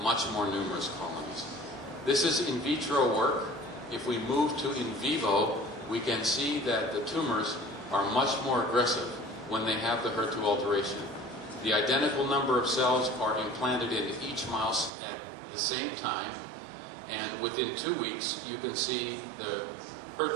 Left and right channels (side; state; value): left; drops out; at 14.9 s